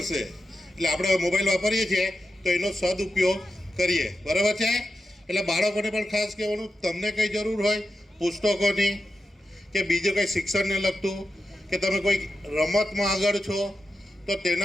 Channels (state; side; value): normal; both; correlation 0.90